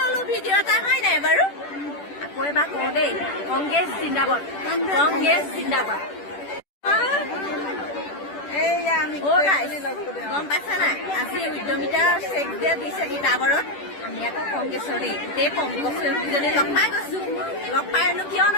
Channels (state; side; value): late; right; 10 ms